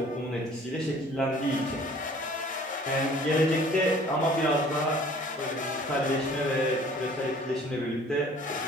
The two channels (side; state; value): both; normal; correlation 0.52